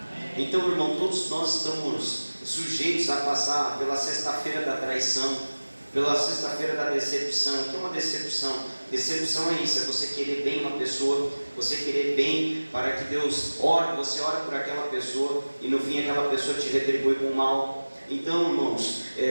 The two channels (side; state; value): both; inverted; correlation -1.00